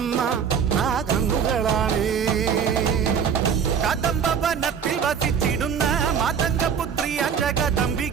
ആ കണ്ണുകളാണേ. കദംബവനത്തിൽ വസിച്ചിടുന്ന മാതംഗപുത്രി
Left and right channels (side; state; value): left; quieter; 7.1 dB